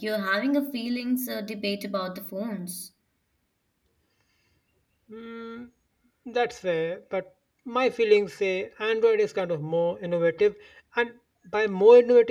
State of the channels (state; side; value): identical; both; correlation 1.00